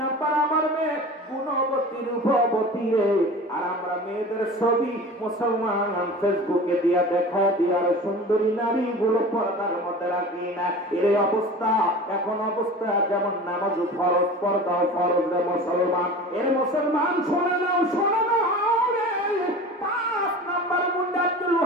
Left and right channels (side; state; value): both; normal; correlation 0.36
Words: নম্বর আমার মেয়ে গুণবতী রূপবতী রে। আর আমরা মেয়েদের ছবি মুসলমান ফেসবুকে দিয়া দেখা দিয়ার সুন্দরী নারী গুলো পর্দার মধ্যে রাখি না। এর অবস্থা এখন অবস্থা যেমন নামাজ ফরজ, পর্দাও ফরজ রে মুসলমান। এর মুসলমান শোনে নাও, শোনে নাও রে। 5 নম্বর গুণ আব্দুল